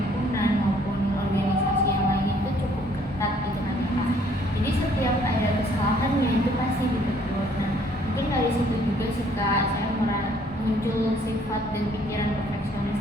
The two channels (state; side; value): normal; both; correlation 0.62